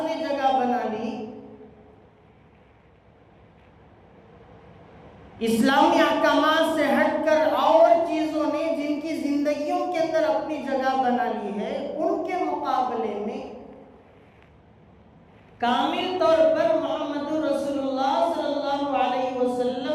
نے جگہ بنا لی، اسلامی احکامات سے ہٹ کر اور چیزوں نے جن کی زندگیوں کے اندر اپنی جگہ بنا لی ہے، ان کے مقابلے میں کامل طور پر محمد رسول اللہ صلی اللہ علیہ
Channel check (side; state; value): both; identical; correlation 1.00